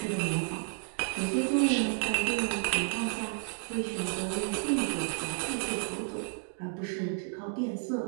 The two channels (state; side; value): silent; left; 57 dB below the other